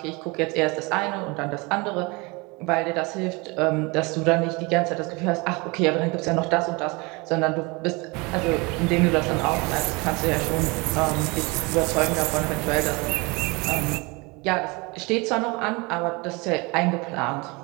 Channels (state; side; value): quieter; left; 26.8 dB